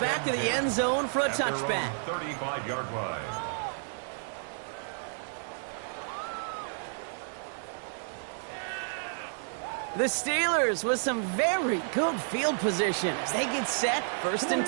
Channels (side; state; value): left; silent; digital silence